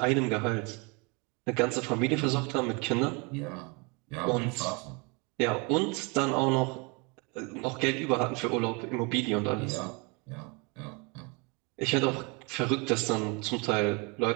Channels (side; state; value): left; quieter; 30.3 dB